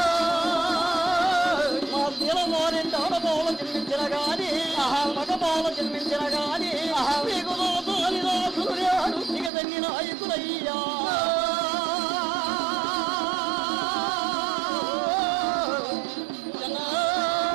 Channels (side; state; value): left; drops out; at 9.5 s